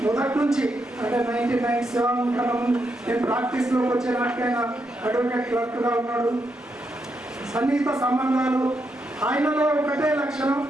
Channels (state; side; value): normal; both; correlation 0.82